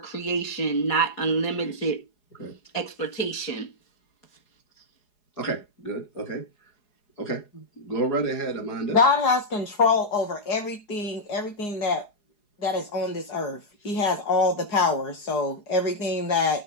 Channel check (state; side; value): late; right; 4.8 ms